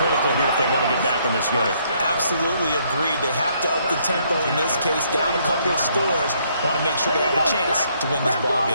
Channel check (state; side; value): inverted; both; correlation -0.69